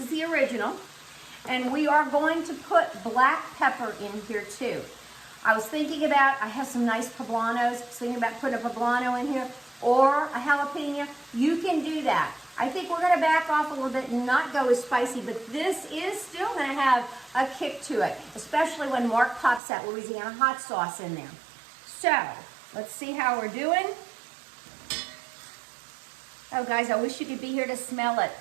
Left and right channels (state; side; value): drops out; left; at 19.6 s